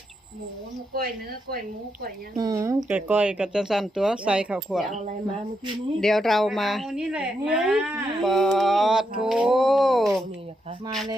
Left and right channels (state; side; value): normal; both; correlation 0.82